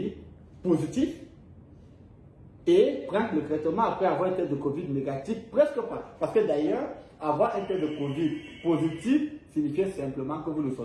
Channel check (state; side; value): identical; both; correlation 1.00